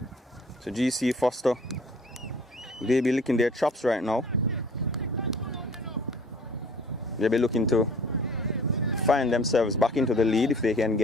So GC Foster, they be licking their chops right now. They'll be looking to find themselves back into the lead if they can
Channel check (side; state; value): both; normal; correlation 0.50